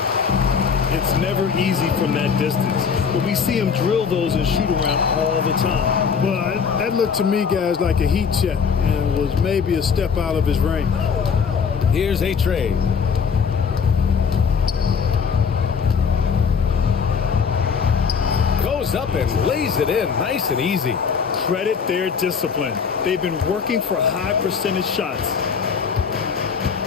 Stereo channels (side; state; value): right; quieter; 6.2 dB